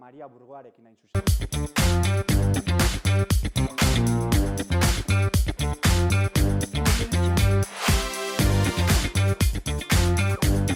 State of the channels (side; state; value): both; identical; correlation 1.00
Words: Burgoarekin hain zuzen.